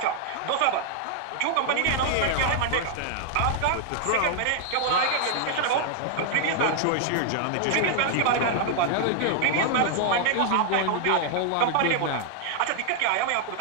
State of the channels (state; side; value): different; both; correlation -0.01